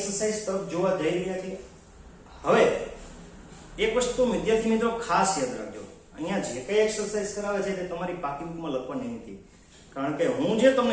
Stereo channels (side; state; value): both; identical; correlation 1.00